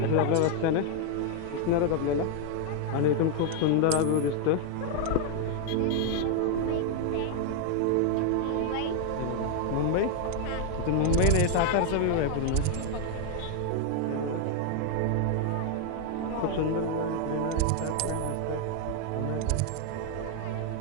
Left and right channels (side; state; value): both; different; correlation 0.00